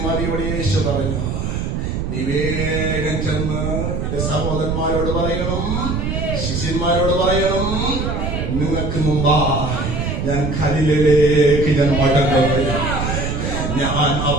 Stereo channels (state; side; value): noise; right; rumble, 2 dB below the sound